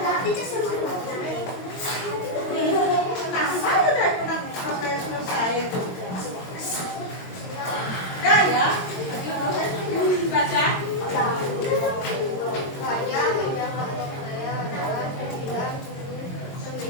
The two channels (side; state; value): right; late; 22 ms